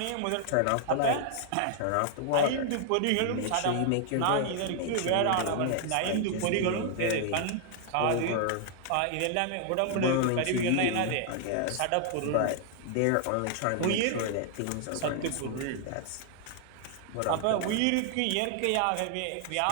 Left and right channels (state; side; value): different; both; correlation 0.00